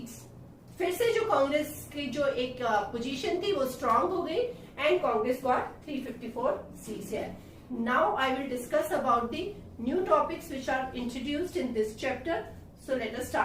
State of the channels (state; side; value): identical; both; correlation 1.00